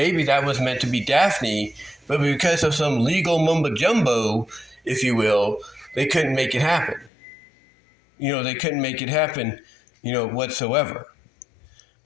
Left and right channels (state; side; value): drops out; right; at 7.1 s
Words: that was meant to be Daphne, but because of some legal mumbo jumbo, if you will, they couldn't make it happen. They couldn't make it happen, whatsoever.